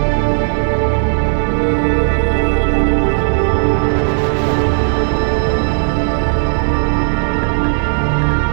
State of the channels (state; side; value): silent; left; digital silence